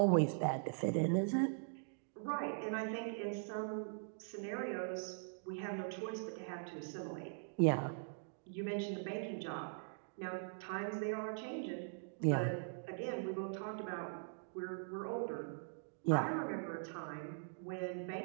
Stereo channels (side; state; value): left; silent; digital silence